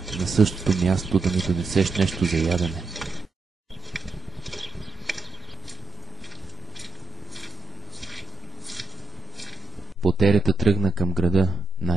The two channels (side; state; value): left; quieter; 3.1 dB